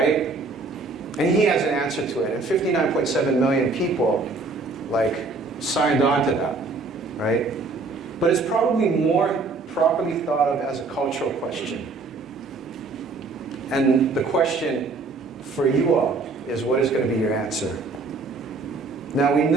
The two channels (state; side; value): quieter; left; 3.8 dB